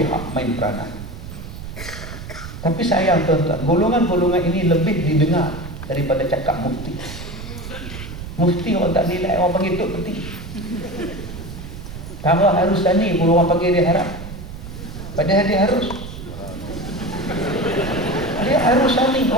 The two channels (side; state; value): right; noise; rumble, 11 dB below the sound